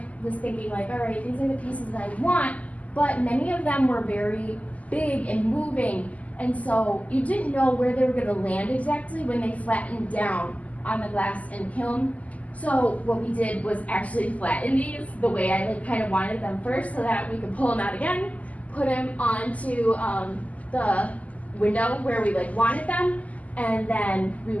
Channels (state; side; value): late; right; 0.073 ms